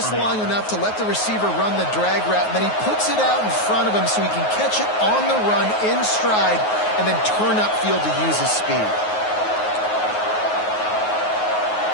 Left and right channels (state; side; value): late; right; 9.4 ms